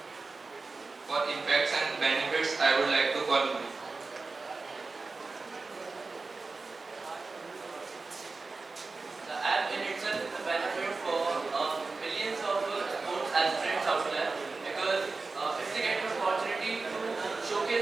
For impacts and benefits, I would like to call you. The app in itself is a benefit for millions of sports aspirants out there, because if they get an opportunity to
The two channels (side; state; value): left; quieter; 3.9 dB